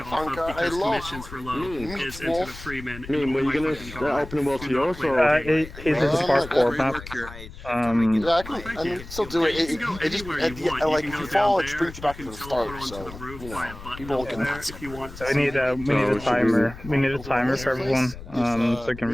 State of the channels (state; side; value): noise; left; rumble, 14 dB below the sound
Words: of Rafanka, I because love commissions were low is Into the Freeman. Were you gonna open the world to yours, or? It is a parkour map. Yeah, I can still do it. It just, like, if you fall, it brings you back to the start, so, you know, people can... So we need a timer. We need a timer for everyone, so we can